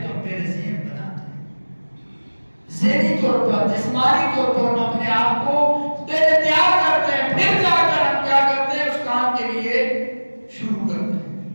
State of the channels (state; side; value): inverted; both; correlation -1.00